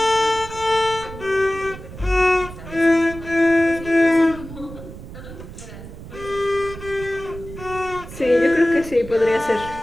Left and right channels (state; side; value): noise; right; rumble, 14 dB below the sound